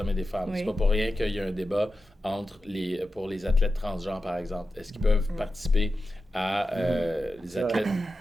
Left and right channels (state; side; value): normal; both; correlation 0.91